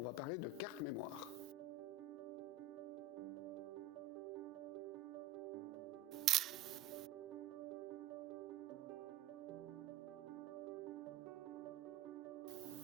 va parler de carte mémoire.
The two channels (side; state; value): left; quieter; 6.5 dB